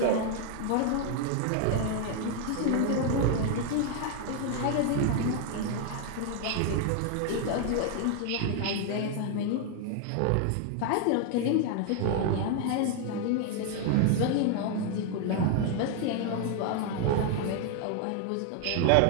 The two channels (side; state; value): both; different; correlation 0.00